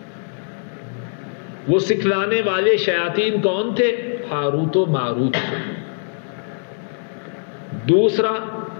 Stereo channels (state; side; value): silent; right; 65 dB below the other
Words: وہ سکھلانے والے شیاطین کون تھے؟ ہاروت و ماروت تھے۔ دوسرا،